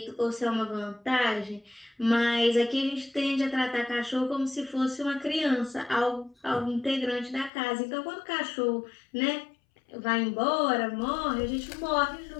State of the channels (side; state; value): right; drops out; at 7.5 s